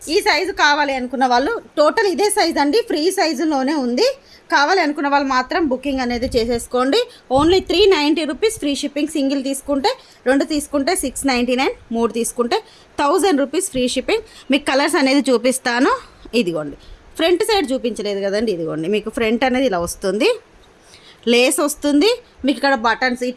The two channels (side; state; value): both; identical; correlation 1.00